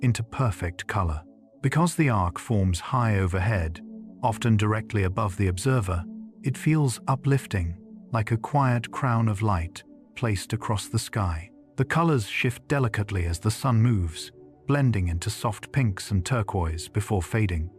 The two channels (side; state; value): both; identical; correlation 1.00